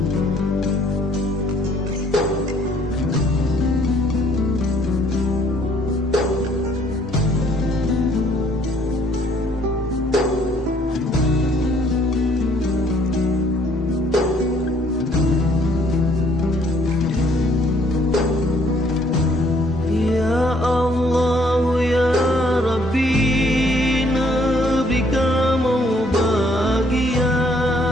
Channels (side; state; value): both; normal; correlation 0.63